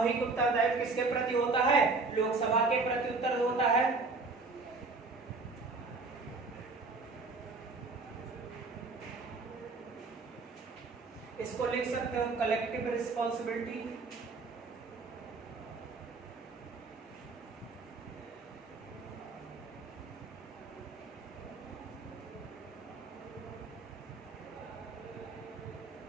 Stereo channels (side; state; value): left; quieter; 3.9 dB